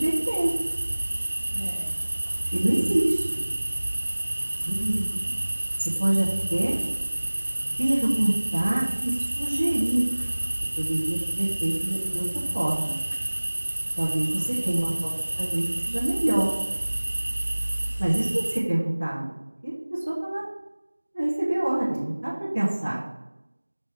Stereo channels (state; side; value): inverted; both; correlation -1.00